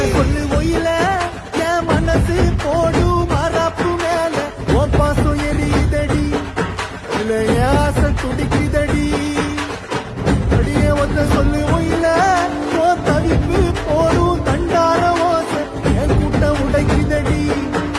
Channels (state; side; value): identical; both; correlation 1.00